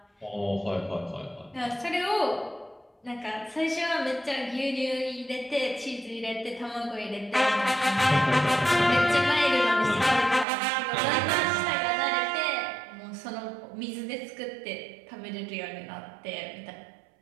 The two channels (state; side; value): drops out; left; at 10.5 s